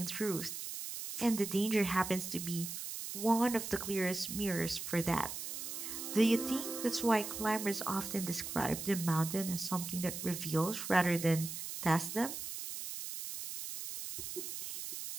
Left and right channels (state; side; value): noise; right; hiss, 6 dB below the sound